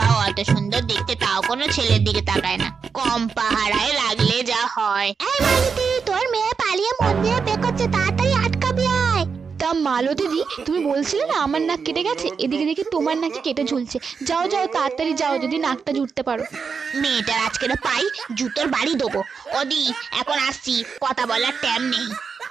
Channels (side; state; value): left; quieter; 5.7 dB